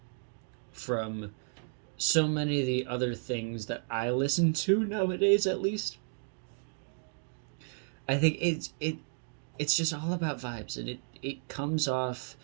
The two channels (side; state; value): left; silent; 56 dB below the other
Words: from so many of the other things that I listen to nowadays, at least. I think it's just all about vibes, and it comes off